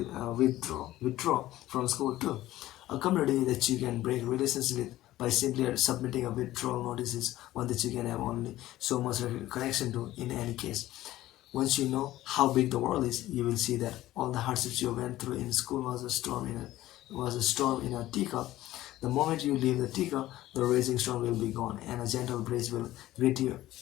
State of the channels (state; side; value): quieter; right; 15.4 dB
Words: withdraw from school too. A community that you can break relations with by simply submitting a withdrawal notice is one that you can have only so much connection to in any case. Once you know how big the world is, you will see that all the hardships you went through in school was a storm in a teacup. The moment you leave the teacup, the raging storm will be gone, and a gentle breeze will greet you